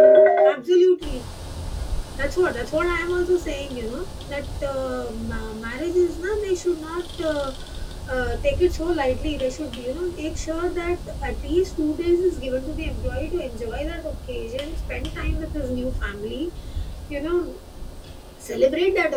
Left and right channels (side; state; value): both; identical; correlation 1.00